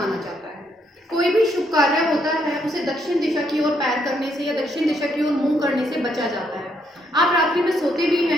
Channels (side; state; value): both; normal; correlation 0.74